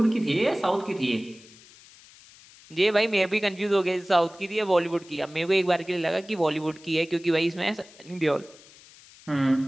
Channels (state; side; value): noise; left; hiss, 23 dB below the sound